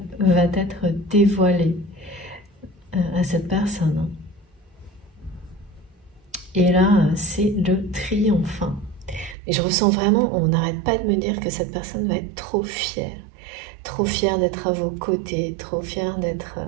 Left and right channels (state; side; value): drops out; left; at 9.3 s